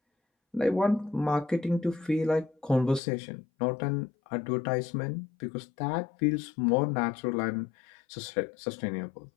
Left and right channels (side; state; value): right; drops out; at 3.0 s